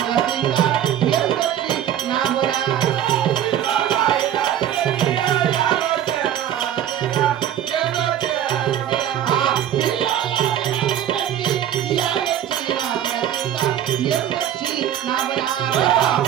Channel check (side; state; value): left; quieter; 10.7 dB